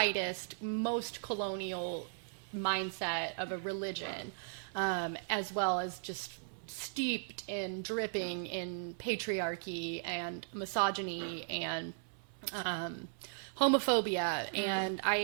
most colonial mindset of a religion, as well as just steeped in dripping in patriarchy and misogyny and homophobia. And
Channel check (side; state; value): left; silent; 53 dB below the other